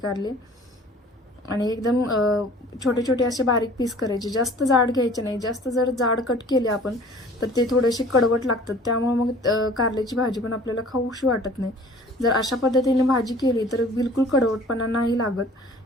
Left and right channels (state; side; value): normal; both; correlation 0.48